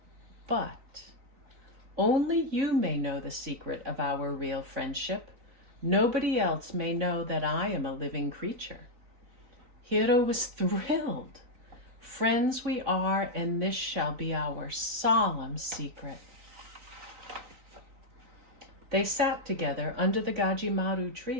but only you may know the secret of our real friendship. Nobody else may know that I am a living creature." Hiro was thrilled. "Friends we are, and this shall be our solemn secret." They sat together under the Gajimaru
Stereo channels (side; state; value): left; late; 3.9 ms